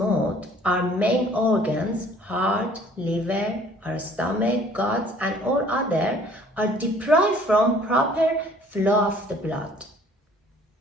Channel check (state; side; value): normal; both; correlation 0.55